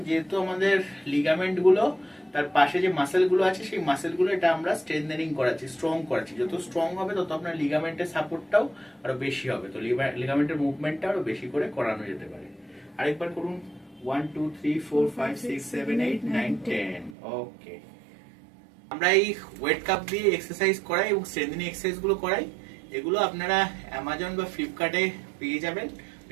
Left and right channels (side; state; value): left; drops out; at 17.2 s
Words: যেহেতু আমাদের লিগামেন্ট গুলো তার পাশে যে মাসেল গুলো আছে সেই মাসেল গুলো এটা আমরা স্ট্রেংথেনিং করাচ্ছি, স্ট্রং করাচ্ছি। যত স্ট্রং হবে তত আপনার লিগামেন্টের সাপোর্টটাও আরো বেশি হবে, তো লিগামেন্টের মুভমেন্টটা আরো বেশি করে করানো যেতে পারে। আরেকবার করুন। 1 2 3 4 5 6 7 8 9 10, ওকে। আমরা এই ওয়েট কাপ দিয়ে এক্সারসাইজ করাই এবং স্ট্রেংথেনিং এক্সারসাইজ গুলো করাই। এগুলো আপনারা অ্যামাজন বা ফ্লিপকার্টে পেয়ে যাবেন।